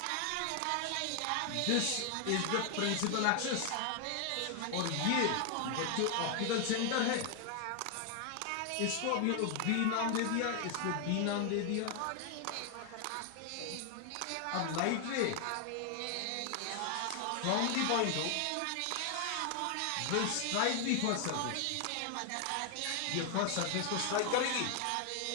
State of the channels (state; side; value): different; both; correlation 0.00